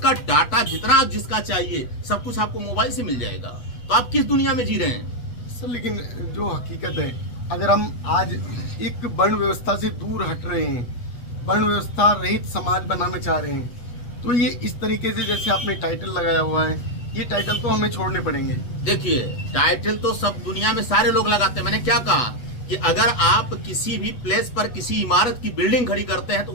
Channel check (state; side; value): late; right; 8.3 ms